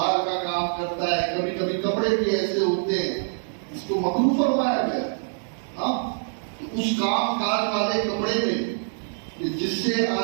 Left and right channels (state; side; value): silent; left; 61 dB below the other